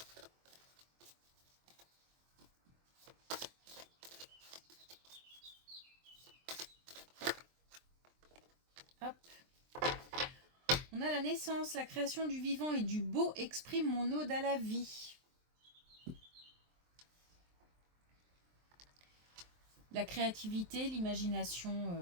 Hop. On a la naissance, la création du vivant et du beau exprime mon ode à la vie. La créativité,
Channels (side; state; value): left; late; 23 ms